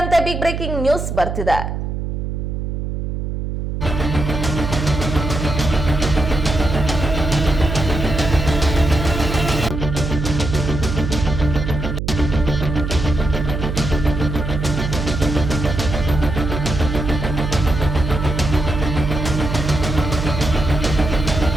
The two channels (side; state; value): right; noise; hum, 3 dB below the sound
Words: ಬಿಗ್ ಬ್ರೇಕಿಂಗ್ ನ್ಯೂಸ್ ಬರ್ತಿದೆ.